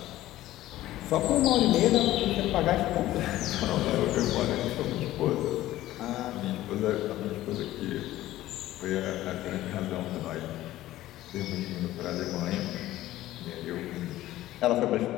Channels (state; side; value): quieter; right; 15.2 dB